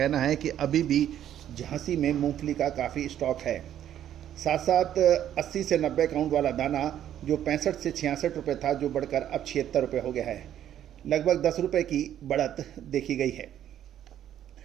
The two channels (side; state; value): left; quieter; 10.9 dB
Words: है कि अभी भी झांसी में मूंगफली का काफ़ी स्टॉक है। साथ साथ 80 से 90 काउंट वाला दाना जो 65 से 66 रुपये था, जो बढ़कर अब 76 रुपये हो गया है। लगभग 10 रुपये की बढ़त देखी गई है।